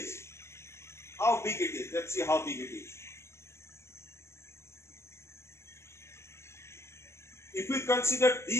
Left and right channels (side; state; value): right; late; 0.13 ms